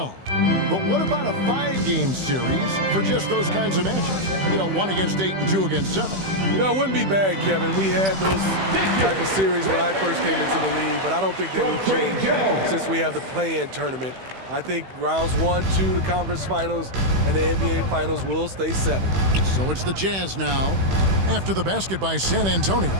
But what about a 5-game series for just those kinds of matchups? You know, 1 against 8 and 2 against 7. You know, it wouldn't be bad, Kevin. We had those type of series when I first came into the league, but I don't think they will change since we have the play-in tournament. I think rounds 1, 2, the conference finals, and the NBA finals will stay 7. So it's the Jazz now after the basket by San Antonio.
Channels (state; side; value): late; left; 16 ms